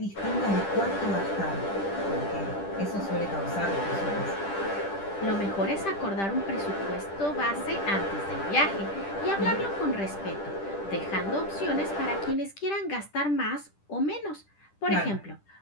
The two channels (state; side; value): late; right; 10 ms